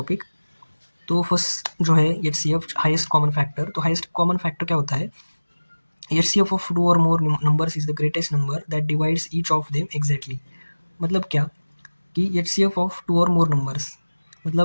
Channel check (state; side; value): inverted; both; correlation -1.00